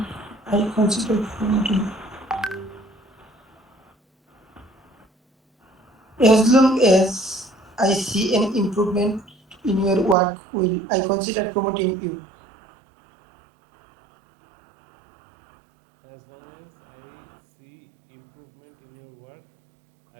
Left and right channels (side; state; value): left; drops out; at 10.2 s